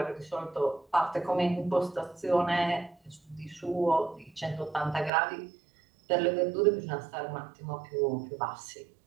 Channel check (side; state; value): left; drops out; at 5.1 s